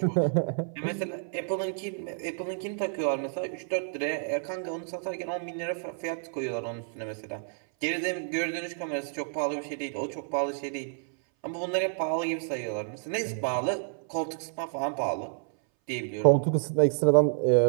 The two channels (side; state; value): left; silent; 58 dB below the other